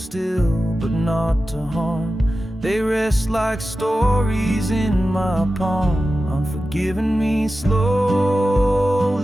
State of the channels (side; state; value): both; normal; correlation 0.93